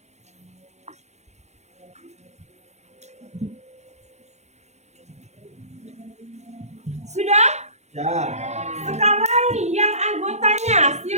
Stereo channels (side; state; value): left; late; 0.33 ms